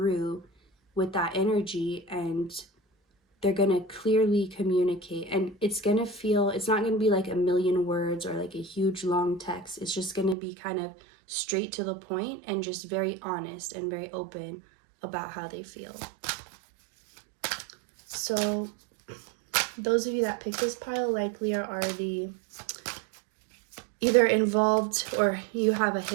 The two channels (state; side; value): drops out; left; at 10.4 s